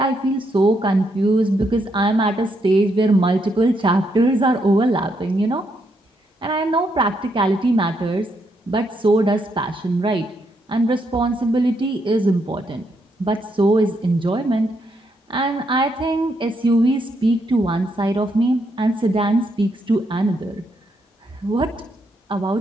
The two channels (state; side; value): normal; both; correlation 0.77